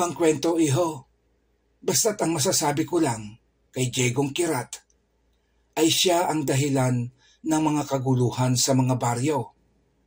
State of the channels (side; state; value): both; identical; correlation 1.00